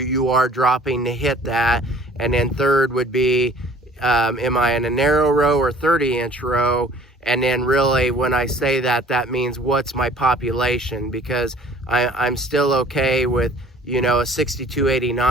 are dropping to hit that? And then third would be, am I in a narrow row or 30-inch row? And then really, when I say that, that means what's my population? Because I'm still okay with, a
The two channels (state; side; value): normal; both; correlation 0.52